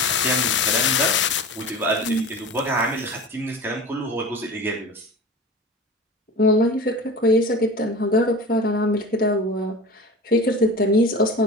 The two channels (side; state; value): both; normal; correlation 0.34